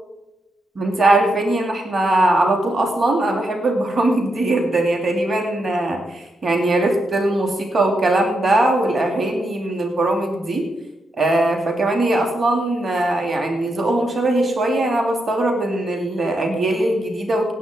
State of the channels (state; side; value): normal; both; correlation 0.83